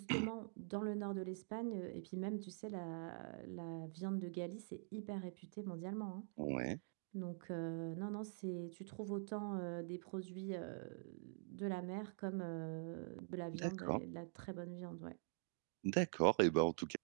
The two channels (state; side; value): silent; left; digital silence